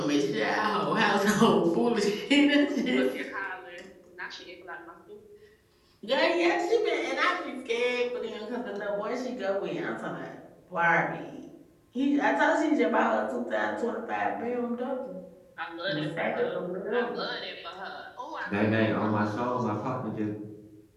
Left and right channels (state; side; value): identical; both; correlation 1.00